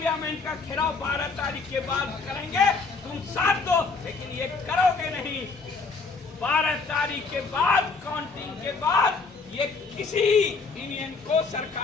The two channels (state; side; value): quieter; right; 4.4 dB